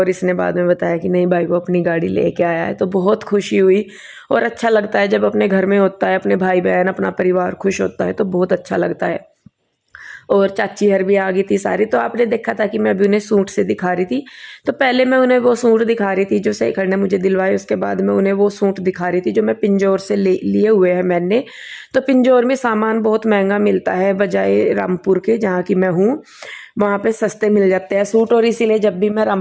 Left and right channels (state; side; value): identical; both; correlation 1.00